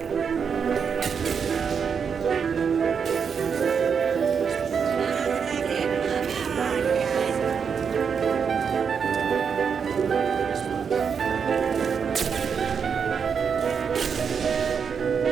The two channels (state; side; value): quieter; left; 6.5 dB